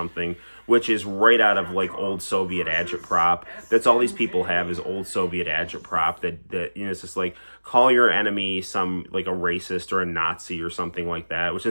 which is right out of like old Soviet agitprop. That's all these people have is old Soviet agitprop that it's just like call your enemy some like a racist or a Nazi or something like that, which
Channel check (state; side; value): inverted; both; correlation -1.00